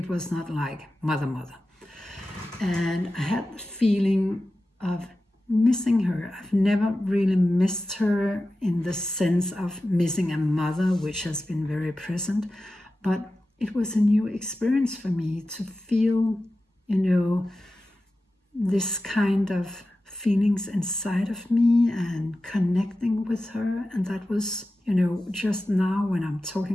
was not like mother. And I had the feeling of missing her. I've never really missed her in the sense of missing a mother, which has been very present, but it was a new experience for me to feel, this kind of feelings inside of me and connecting with her. And that was, just now when I'm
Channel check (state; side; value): normal; both; correlation 0.93